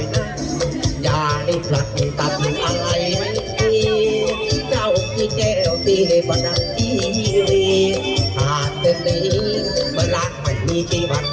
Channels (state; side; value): identical; both; correlation 1.00